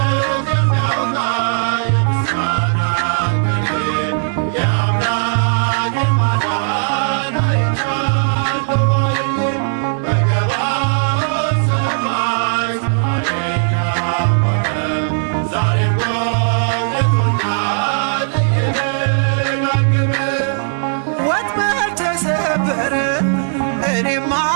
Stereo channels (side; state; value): left; silent; digital silence